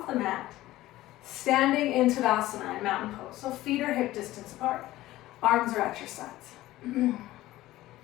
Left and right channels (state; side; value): quieter; right; 16.3 dB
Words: the mat, standing in Savasana, in mountain pose. So feet are hip distance apart. Arms are at your sides.